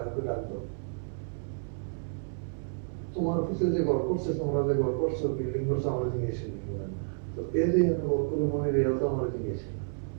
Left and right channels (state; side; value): silent; left; 57 dB below the other